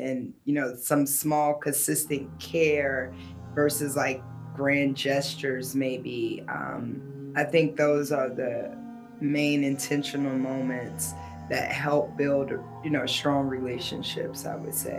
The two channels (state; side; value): identical; both; correlation 1.00